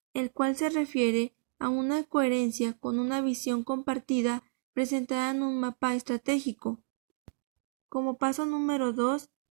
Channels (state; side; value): silent; left; digital silence